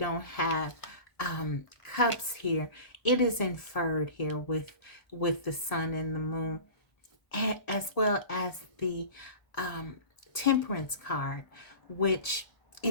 have cups here, it is inferred here with the sun and the moon, as well as the temperance card, which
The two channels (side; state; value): right; late; 1.8 ms